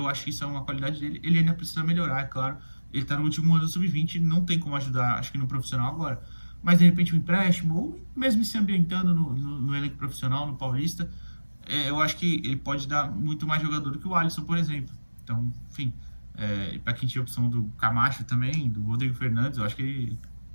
acho que isso é uma qualidade dele. Ele ainda precisa melhorar, é claro. Ele tá no último ano do sub-20, não tem como ajudar, acho que no profissional agora. Mas de repente um empréstimo, ou mesmo se ambientando no elenco profissional, no Paulista, eu acho que ele pode dar muito mais jogador do que o Alisson, por exemplo. Então, enfim, para quem tinha a opção do Camacho também, do Rodrigo Fernandes, eu acho que ele.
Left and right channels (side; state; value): both; inverted; correlation -1.00